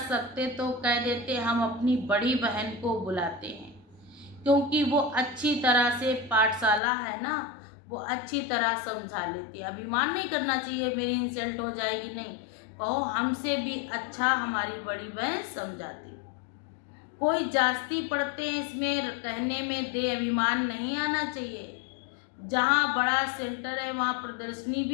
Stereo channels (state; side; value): drops out; right; at 6.8 s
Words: सकते तो कह देते हम अपनी बड़ी बहन को बुलाते हैं, क्योंकि वो अच्छी तरह से पाठशाला है ना, वो अच्छी तरह समझा लेती है। अभिमान नहीं करना चाहिए मेरी इंसल्ट हो जाएगी, नहीं, कहो हमसे भी अच्छा हमारी बड़ी बहन समझाती। कोई जास्ती पढ़ते हैं इसमें कहने में दे अभिमान नहीं आना चाहिए। जहाँ बड़ा सेंटर है वहाँ प्रदर्शनी